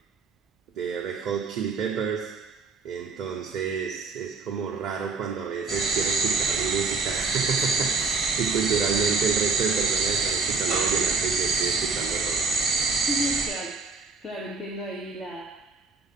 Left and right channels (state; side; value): quieter; left; 4.5 dB